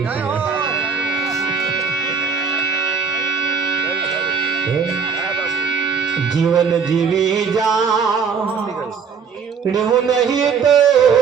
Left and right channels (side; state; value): left; quieter; 6.0 dB